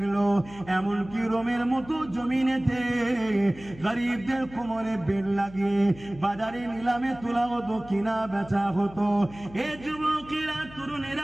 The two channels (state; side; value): noise; left; hum, 19 dB below the sound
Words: এমনকি রোমের মতো জমিনেতে গরিবদের কোমরে বেড় লাগিয়ে বাজারে নিলামে তোলা হতো, কিনা বেচা হতো। এ যুবকেরা,